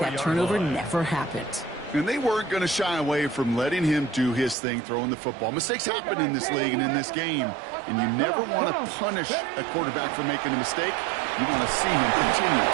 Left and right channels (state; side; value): drops out; left; at 4.5 s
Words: turnover never happened. And they weren't going to shy away from letting him do his thing, throwing the football. Mistakes happen in this league and in this game, and you never want to punish a quarterback for making a mistake. You want to see him continue